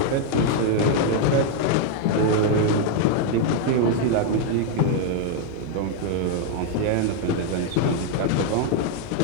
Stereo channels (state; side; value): different; both; correlation 0.00